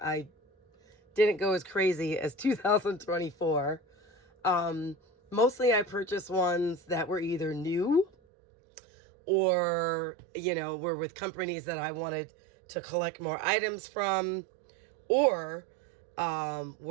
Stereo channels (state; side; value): drops out; left; at 8.1 s